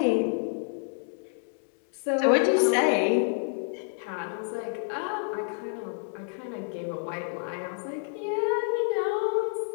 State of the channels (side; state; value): right; silent; 59 dB below the other